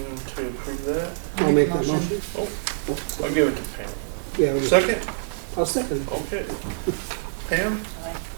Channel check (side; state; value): left; silent; digital silence